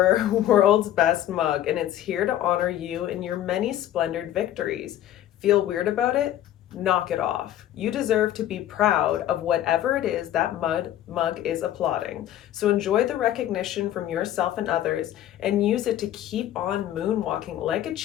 world's best mug, and it's here to honor you in your many splendored victories. Feel weird about it? Knock it off. You deserve to be proud of whatever it is that mug is applauding. So enjoy the recognition from yourself and others, and use it to keep on moonwalking like a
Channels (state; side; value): quieter; right; 12.4 dB